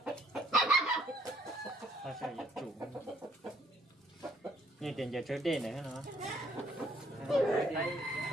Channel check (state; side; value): normal; both; correlation 0.65